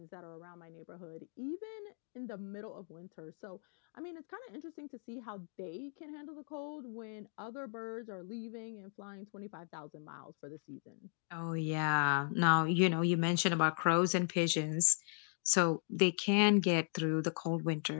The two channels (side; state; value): right; silent; 53 dB below the other